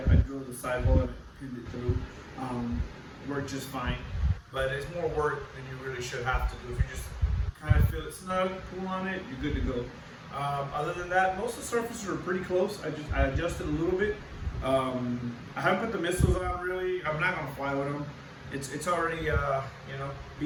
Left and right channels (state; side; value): identical; both; correlation 1.00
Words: drilled the side hole and pinned it through. Worked just fine, but it's more work than you really should have to do. If you just kind of feel it snug, pull on it, you're good to go. Other than that, most of the surfaces are pretty close. I adjusted a little bit. I haven't put the missiles on really. I'm not gonna fly with them. It's already you know,